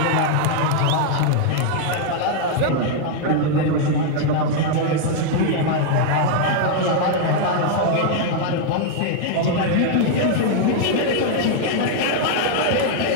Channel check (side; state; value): both; different; correlation 0.00